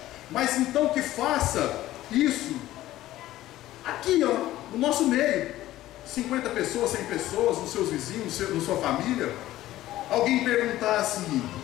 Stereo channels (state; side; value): quieter; right; 15.0 dB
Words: mas então que faça isso aqui, ó, no nosso meio, 50 pessoas, 100 pessoas, nos seus vizinhos, na sua família. Alguém perguntar assim,